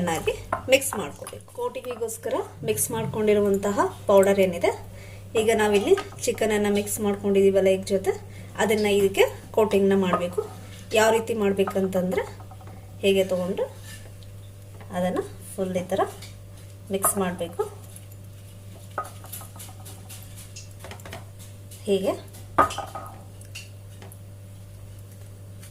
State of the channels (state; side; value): identical; both; correlation 1.00